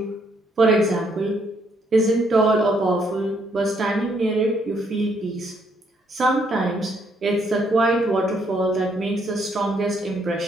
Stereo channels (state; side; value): normal; both; correlation 0.71